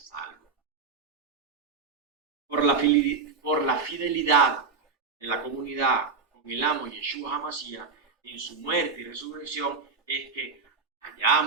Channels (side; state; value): left; quieter; 4.8 dB